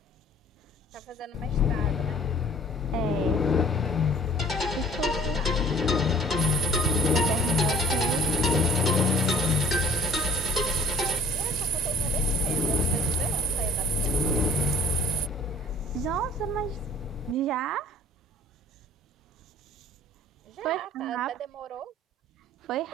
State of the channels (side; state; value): both; normal; correlation 0.50